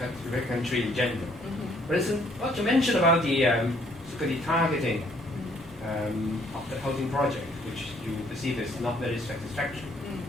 country in general. For instance, what you mentioned about the sort of the targeting of the housing project, which you perceive as not very satisfactory,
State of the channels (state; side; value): normal; both; correlation 0.64